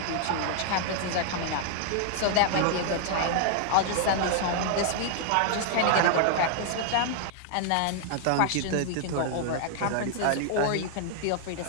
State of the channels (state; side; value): different; both; correlation 0.00